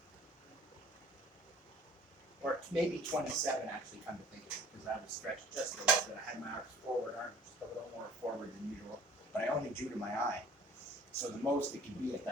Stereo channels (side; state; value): both; normal; correlation 0.50